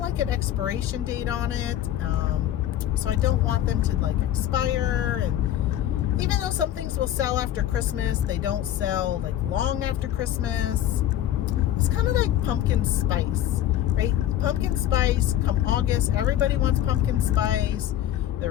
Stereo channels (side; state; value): right; quieter; 12.1 dB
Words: an expiration date on it, so I don't want them to like expire. And even though some things will sell after Christmas, they don't sell like long after Christmas. It's kind of like pumpkin spice, right? Pumpkin spice, come August, everybody wants pumpkin spice.